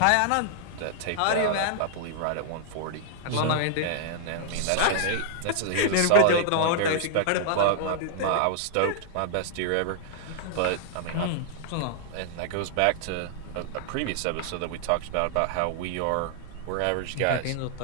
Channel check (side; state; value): both; different; correlation -0.01